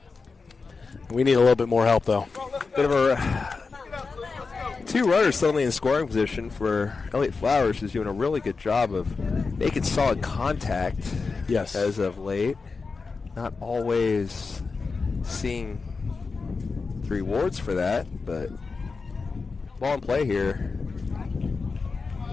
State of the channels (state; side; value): quieter; right; 4.5 dB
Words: We need a little bit more help, though. Bit of a 2 runners suddenly in scoring position for Elliott Flowers, who's doing a really good job of making solid contact. Yes. As of late, not always seeing the rewards for that, but ball in play here.